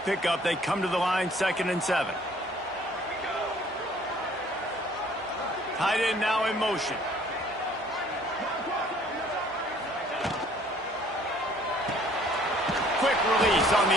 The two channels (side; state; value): both; normal; correlation 0.57